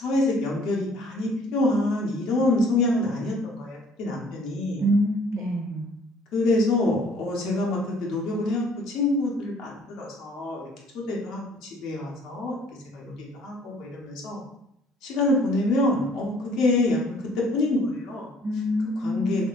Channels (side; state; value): both; normal; correlation 0.58